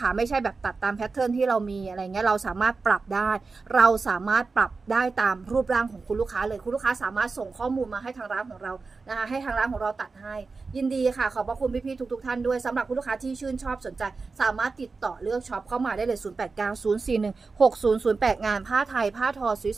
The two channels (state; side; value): quieter; left; 4.3 dB